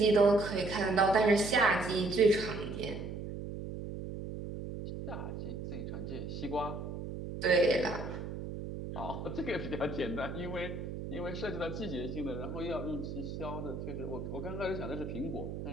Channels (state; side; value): noise; right; hum, 7 dB below the sound